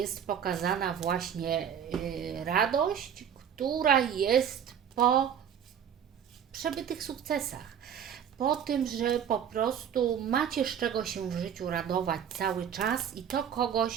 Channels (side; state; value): left; quieter; 8.6 dB